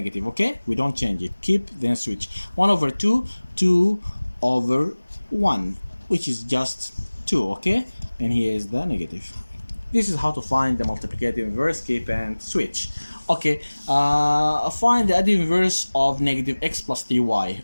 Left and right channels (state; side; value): inverted; both; correlation -1.00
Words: okay? We don't change it. Keep, then switch. 1 over 2, 2 over 1, which is just 2, okay? And here is the negative. This is how to find the multiplicative inverse, keep and switch. Okay, find the additive inverse of negative x plus 3y.